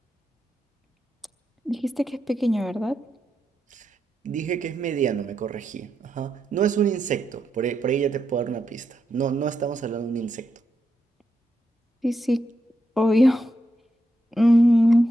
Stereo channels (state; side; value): normal; both; correlation 0.84